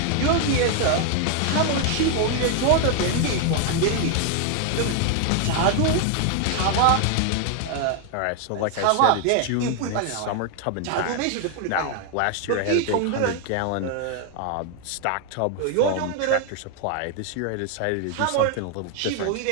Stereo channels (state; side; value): different; both; correlation 0.01